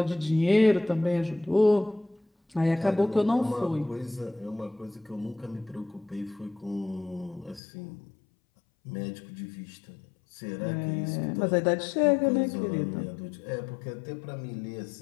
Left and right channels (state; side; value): drops out; right; at 7.6 s